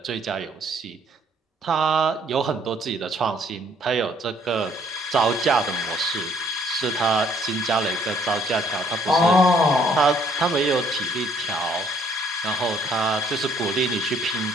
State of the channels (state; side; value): normal; both; correlation 0.64